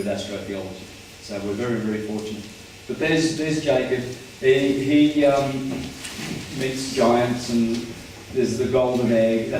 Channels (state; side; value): identical; both; correlation 1.00